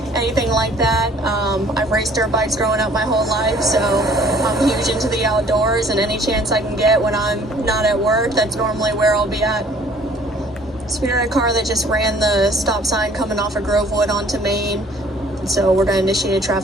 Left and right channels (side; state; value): both; normal; correlation 0.56